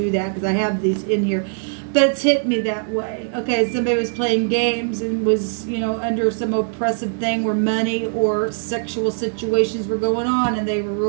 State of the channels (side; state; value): left; silent; 59 dB below the other